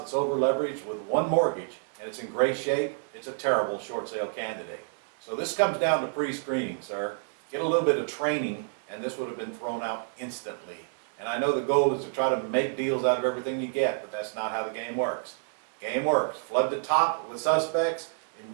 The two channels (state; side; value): silent; left; 57 dB below the other